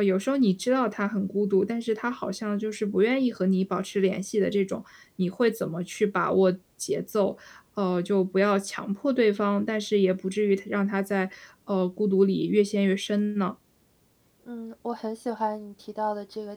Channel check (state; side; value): identical; both; correlation 1.00